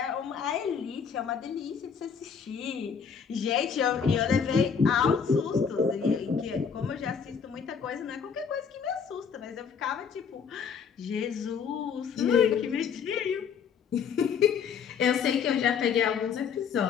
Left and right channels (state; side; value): quieter; right; 6.6 dB